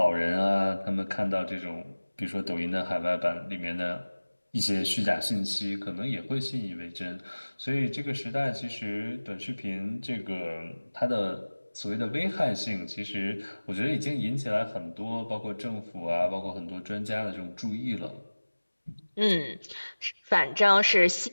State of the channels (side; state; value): both; inverted; correlation -1.00